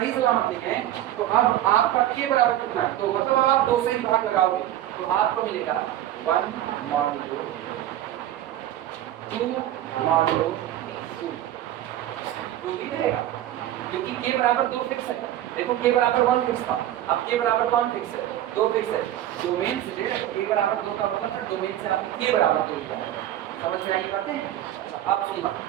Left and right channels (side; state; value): left; quieter; 12.8 dB